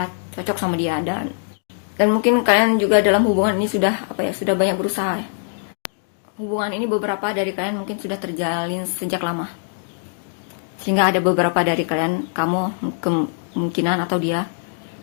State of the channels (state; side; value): silent; right; 65 dB below the other